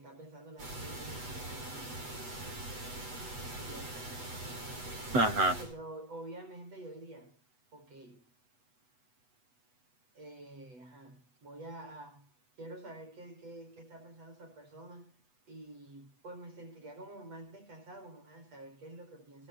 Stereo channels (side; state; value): left; late; 8.1 ms